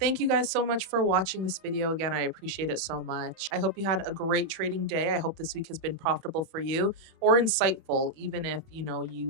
you guys so much for watching this video. Again, I appreciate it so much. I hope you had a great trading day. I hope this week has been profitable for you or insightful, even if, you know,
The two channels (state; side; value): late; left; 31 ms